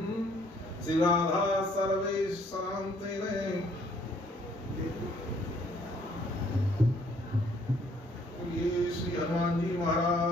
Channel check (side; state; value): both; normal; correlation 0.63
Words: श्री राधा सर्वेश शांति ये श्री हनुमान जी